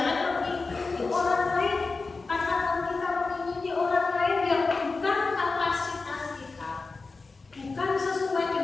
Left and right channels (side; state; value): right; quieter; 4.0 dB